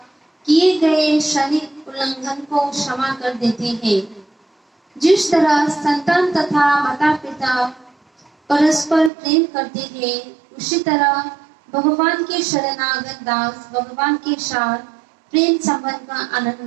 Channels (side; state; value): left; drops out; at 9.1 s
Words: किए गए क्षणिक उल्लंघन को क्षमा कर देते हैं। जिस तरह संतान तथा माता पिता परस्पर प्रेम करते हैं, उसी तरह भगवान के शरणागत दास भगवान के साथ प्रेम संबंध का